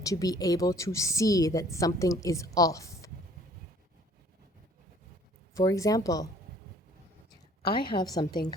to be able to see that something is off. For example, I have something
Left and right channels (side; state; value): both; normal; correlation 0.55